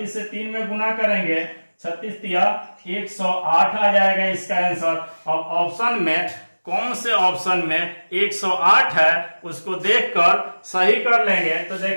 से 3 में गुना करेंगे, 36 तिया 108 आ जाएगा इसका आंसर। अब ऑप्शन में कौन से ऑप्शन में 108 है उसको देखकर सही कर लेंगे। तो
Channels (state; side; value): inverted; both; correlation -1.00